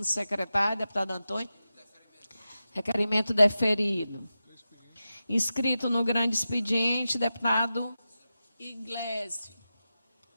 secretário, deputado Antônio? Requerimento deferido. Inscrito no grande expediente, deputado Iglesias.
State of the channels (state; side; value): inverted; both; correlation -0.93